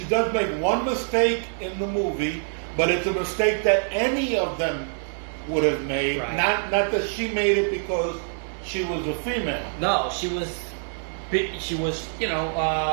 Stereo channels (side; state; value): left; silent; digital silence